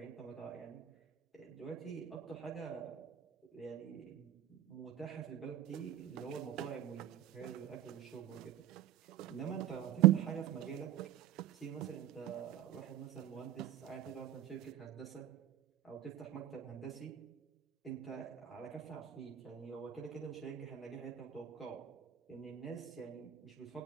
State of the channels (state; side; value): quieter; left; 12.0 dB